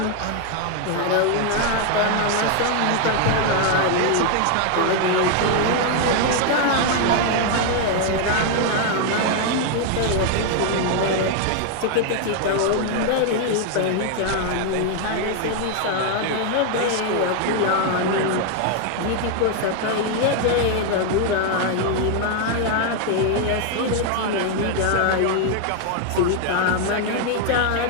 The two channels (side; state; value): both; different; correlation 0.00